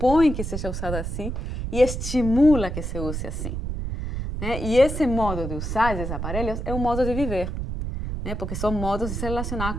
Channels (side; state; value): right; noise; rumble, 4 dB below the sound